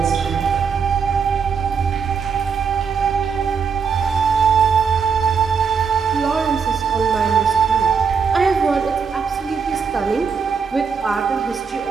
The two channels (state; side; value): quieter; left; 6.0 dB